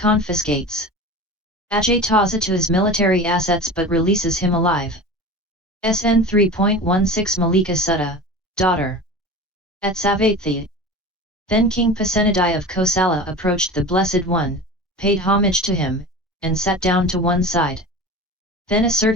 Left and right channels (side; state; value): both; normal; correlation 0.33